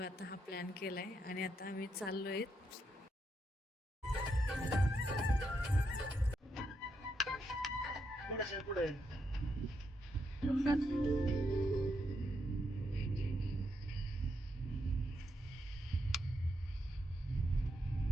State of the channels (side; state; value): both; normal; correlation 0.81